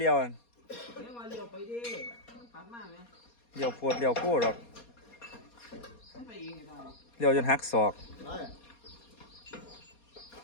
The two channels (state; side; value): late; right; 4.2 ms